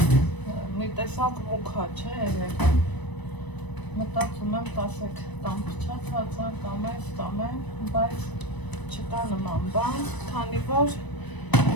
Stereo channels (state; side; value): late; right; 1.0 ms